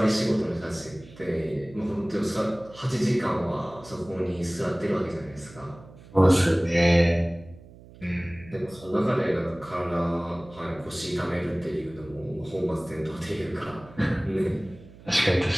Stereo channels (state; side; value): noise; right; hum, 20 dB below the sound